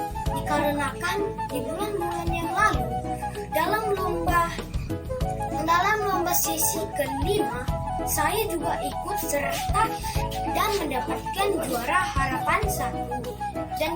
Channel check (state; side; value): identical; both; correlation 1.00